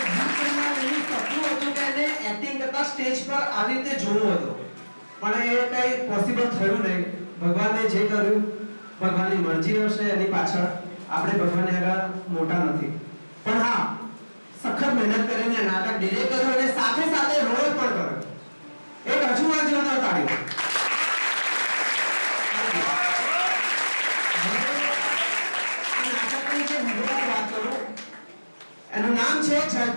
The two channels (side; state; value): both; inverted; correlation -1.00